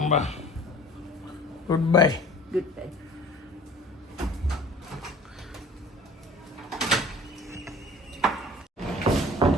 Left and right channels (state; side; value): normal; both; correlation 0.45